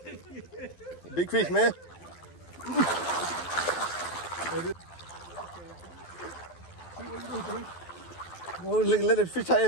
Big fish, man. Oh, let it fish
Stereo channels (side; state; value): right; late; 12 ms